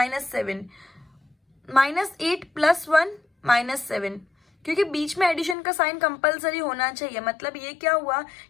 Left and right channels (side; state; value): right; drops out; at 5.6 s